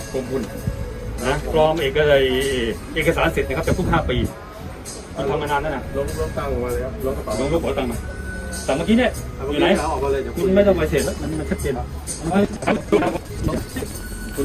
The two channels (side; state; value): both; identical; correlation 1.00